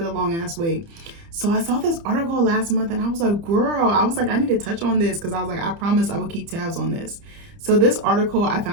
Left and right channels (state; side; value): late; left; 30 ms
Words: the long ass wait. So I saw this article last month and I was like, girl, I need to touch on this because I was like, I promised I would keep tabs on this. So this article I